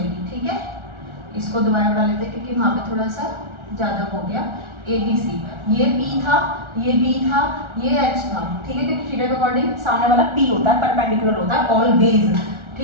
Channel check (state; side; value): late; left; 1.4 ms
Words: ठीक है। इसको दोबारा बना लेते हैं क्योंकि वहाँ पे थोड़ा सा ज़्यादा हो गया, ABC, ये P था, ये B था, ये H था, ठीक है, क्योंकि थीटा के अकॉर्डिंग सामने वाला P होता है, परपेंडिकुलर होता है ऑलवेज,